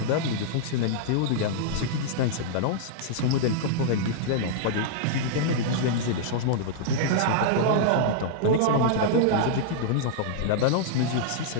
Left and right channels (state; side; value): different; both; correlation -0.02